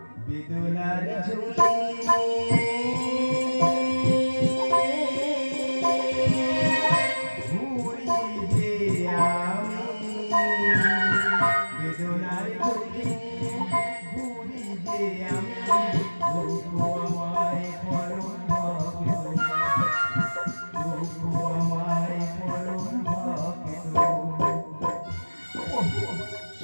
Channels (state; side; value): inverted; both; correlation -1.00